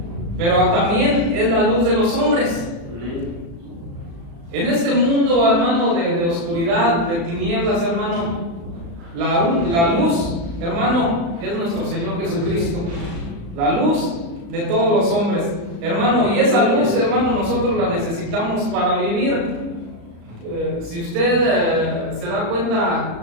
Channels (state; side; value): late; left; 35 ms